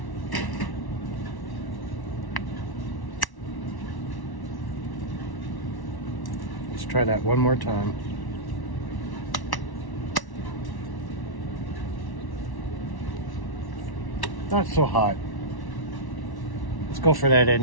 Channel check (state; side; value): late; right; 1.1 ms